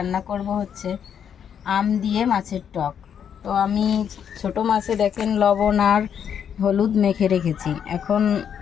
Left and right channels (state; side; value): quieter; right; 8.3 dB